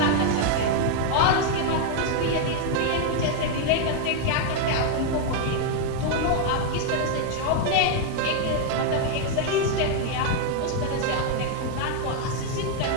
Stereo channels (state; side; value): different; both; correlation 0.00